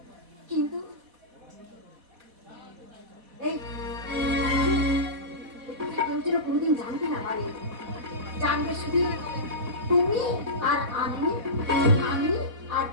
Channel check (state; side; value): late; left; 4.1 ms